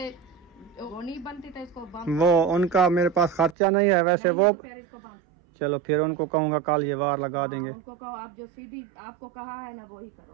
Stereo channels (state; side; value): drops out; left; at 3.6 s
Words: वो नहीं बनती था, इसको बंद। वो उनका मेरे पास खर्चा नहीं है वैसे नहीं, वो तो फिर इसको बंद। चलो फिर उनको कहूँगा कल ये वार लगा देंगे। उनको कहो आप जो सीधी आपको कहा है ना वो ही